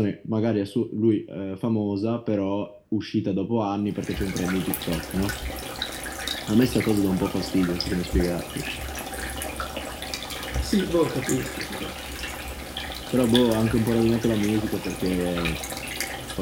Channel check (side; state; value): both; identical; correlation 1.00